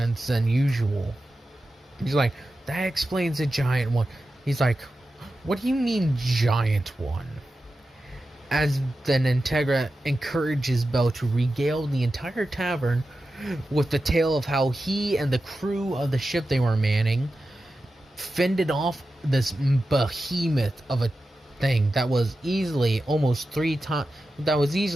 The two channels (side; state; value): both; normal; correlation 0.92